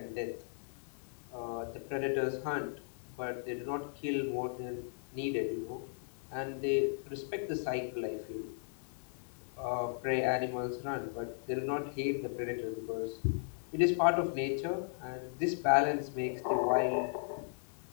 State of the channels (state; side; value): silent; right; 54 dB below the other